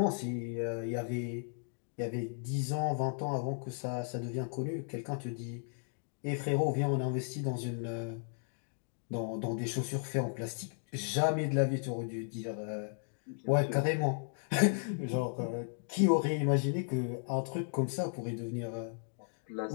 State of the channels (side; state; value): right; silent; digital silence